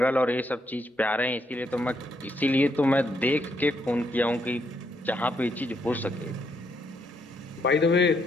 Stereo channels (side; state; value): both; normal; correlation 0.75